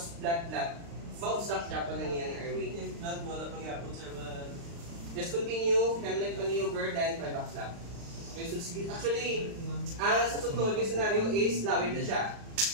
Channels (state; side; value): late; left; 35 ms